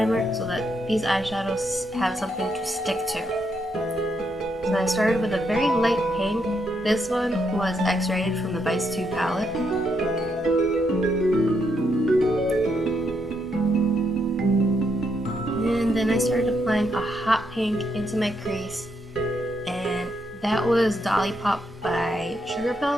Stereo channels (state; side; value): normal; both; correlation 0.78